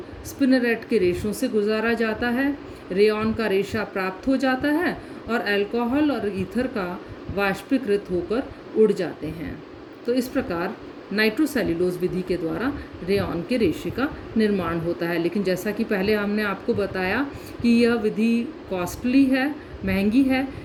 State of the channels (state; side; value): identical; both; correlation 1.00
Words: स्पिनरेट के रेशों से गुजारा जाता है, रेयॉन का रेशा प्राप्त हो जाता है और अल्कोहल और ईथर का वाष्पीकृत होकर उड़ जाते हैं। तो इस प्रकार नाइट्रोसेल्यूलोज विधि के द्वारा रेयॉन के रेशे का निर्माण होता है। लेकिन जैसा कि पहले हमने आपको बताया कि यह विधि कॉस्टली है, महंगी है,